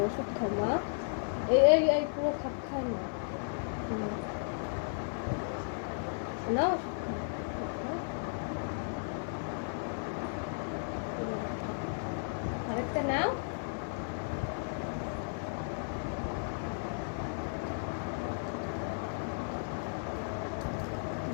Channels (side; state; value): right; silent; digital silence